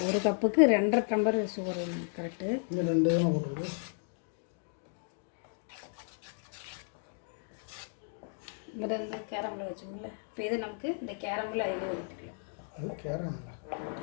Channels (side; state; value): right; silent; 55 dB below the other